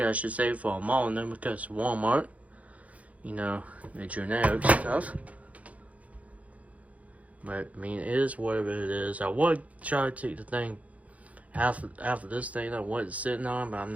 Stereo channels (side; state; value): left; late; 0.068 ms